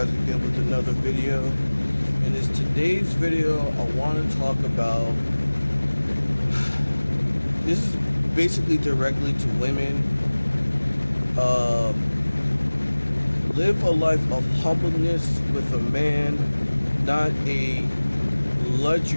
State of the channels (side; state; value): both; inverted; correlation -1.00